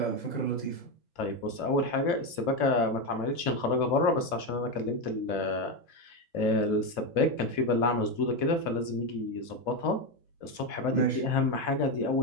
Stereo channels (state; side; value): late; right; 2.7 ms